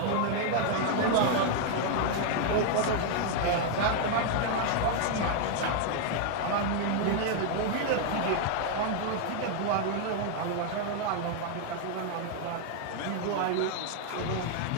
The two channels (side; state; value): both; different; correlation 0.00